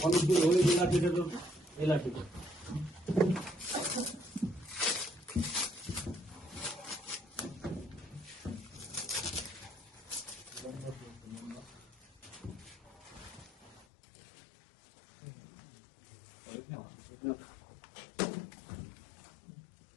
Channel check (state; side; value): drops out; right; at 13.9 s